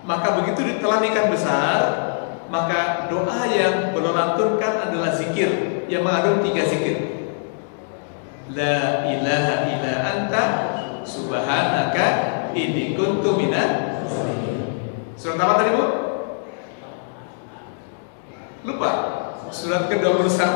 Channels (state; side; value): silent; right; digital silence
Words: Maka begitu ditelan ikan besar, maka doa yang beliau lantunkan adalah zikir yang mengandung 3 zikir. La ilaha illa anta subhanaka inni kuntu minaz zalimin. Surat apa tadi Bu? Lupa. Surat